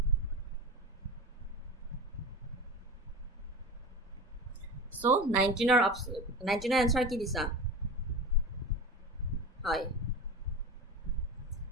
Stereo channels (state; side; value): normal; both; correlation 0.28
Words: So 19ৰ answer কি দিছা? হয়,